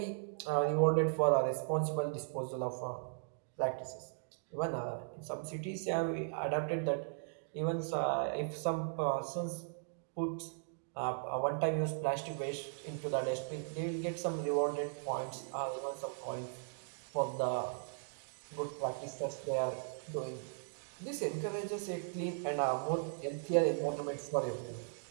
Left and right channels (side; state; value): left; silent; digital silence